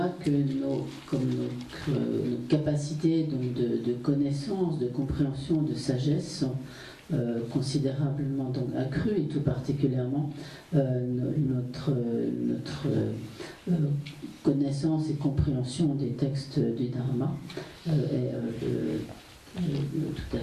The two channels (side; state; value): both; identical; correlation 1.00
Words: que nos capacités donc de connaissance, de compréhension, de sagesse sont considérablement donc accru, et tout particulièrement notre connaissance et compréhension des textes du Dharma est tout à